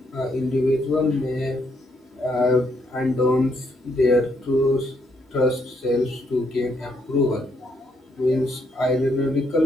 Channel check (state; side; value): normal; both; correlation 0.74